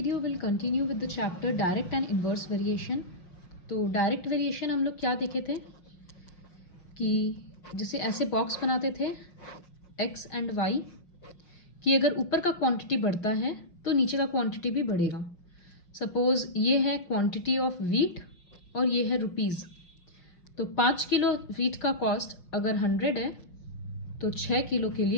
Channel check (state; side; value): late; right; 5.6 ms